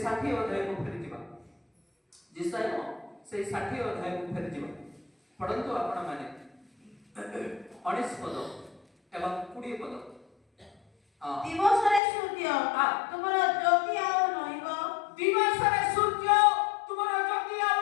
60 ଅଧ୍ୟାୟକୁ ଫେରିଯିବା। ଯେସାୟା ସେଇ 60 ଅଧ୍ୟାୟକୁ ଫେରିଯିବା। ପଢ଼ନ୍ତୁ ଆପଣମାନେ 19 ପଦ ଏବଂ 20 ପଦ। ଦିବସରେ ସୂର୍ଯ୍ୟ ତୁମର ଜ୍ୟୋତି ଆଉ ରହିବ। ଦିବସରେ ସୂର୍ଯ୍ୟ ତୁମର ଜ୍ୟୋତି ଆଉ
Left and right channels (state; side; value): drops out; right; at 12.0 s